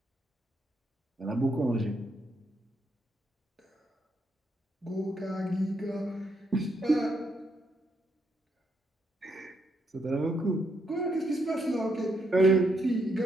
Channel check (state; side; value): normal; both; correlation 0.77